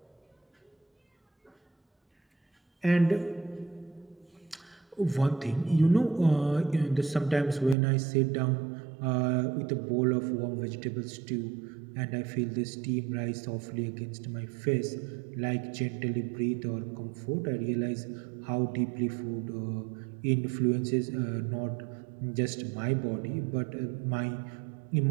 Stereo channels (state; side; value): drops out; left; at 7.8 s